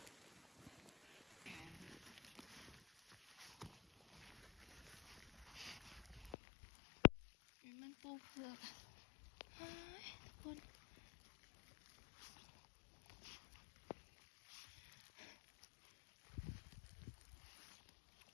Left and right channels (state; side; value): drops out; right; at 6.4 s